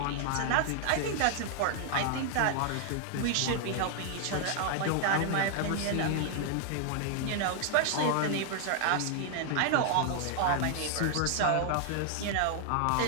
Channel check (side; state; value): both; different; correlation 0.00